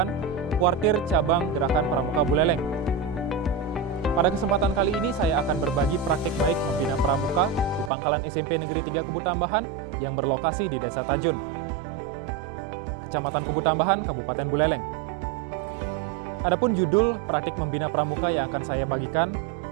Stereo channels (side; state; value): left; drops out; at 7.9 s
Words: Kuartir Cabang Gerakan Pramuka Buleleng. Pada kesempatan kali ini saya akan berbagi praktik baik membina pramuka di Pangkalan SMP Negeri 3 Kubu Tambahan yang berlokasi di Desa Tajun, Kecamatan Kubu Tambahan, Kabupaten Buleleng. Adapun judul praktik membina pramuka yang akan saya bagikan